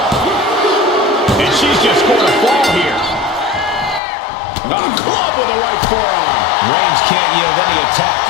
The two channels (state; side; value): drops out; right; at 4.0 s